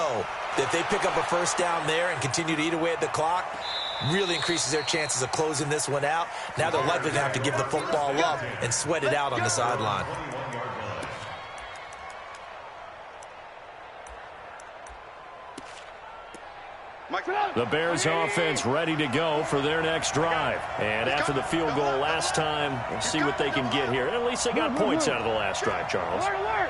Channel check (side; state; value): both; identical; correlation 1.00